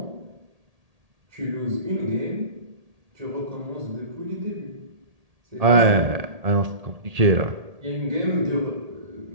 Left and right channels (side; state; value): left; late; 1.8 ms